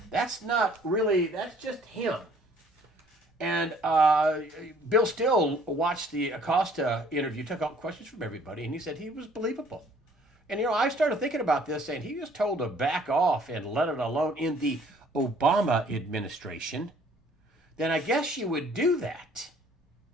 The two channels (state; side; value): normal; both; correlation 0.58